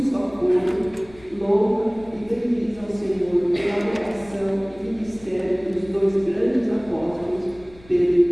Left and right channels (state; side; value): noise; left; rumble, 23 dB below the sound